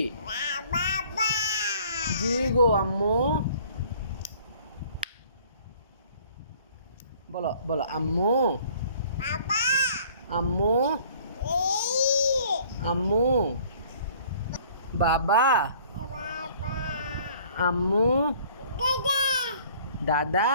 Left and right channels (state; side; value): inverted; both; correlation -0.54